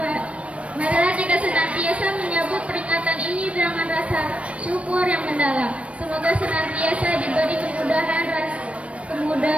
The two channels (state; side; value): late; left; 0.063 ms